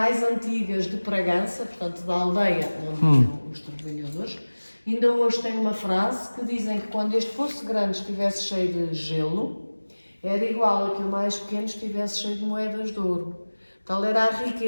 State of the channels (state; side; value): inverted; both; correlation -1.00